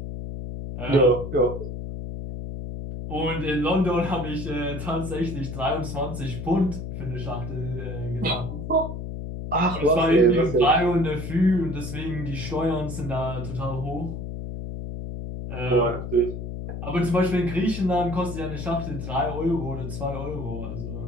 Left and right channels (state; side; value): noise; left; hum, 6 dB below the sound